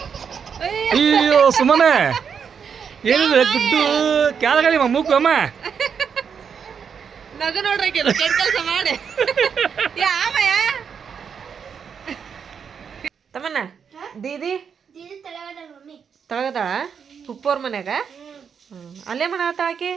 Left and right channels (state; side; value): quieter; left; 6.9 dB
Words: ಅಯ್ಯೋ ಸುಮ್ಮನೆ ಏನಿದೆ ಗುಡ್ಡು ಕ್ಯಾಲಗಳಿ ಮೂಕು ಅಮ್ಮ ನಗು ನೋಡ್ರಿ ಕೆಲಸ ಮಾಡಿ ತಮ್ಮನ್ನ ದೀದಿ ತಳಗದಾಳ ಉಪ್ಪೋರ್ ಮನ್ಯಾಗ. ಅಲ್ಲೇ ಮಾಡತ್ತಾಳ ಆಕಿ.